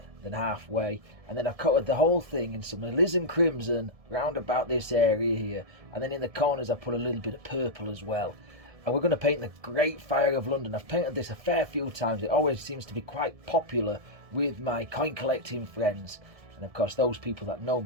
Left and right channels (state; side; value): late; left; 1.7 ms